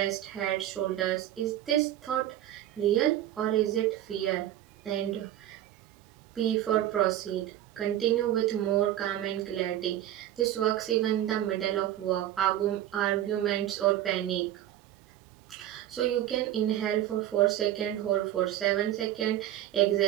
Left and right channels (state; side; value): quieter; left; 12.7 dB